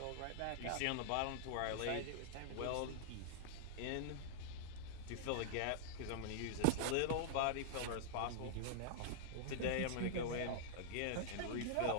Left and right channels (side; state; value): both; different; correlation -0.01